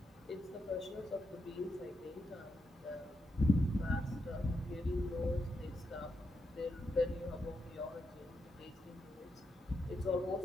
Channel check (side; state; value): both; normal; correlation 0.84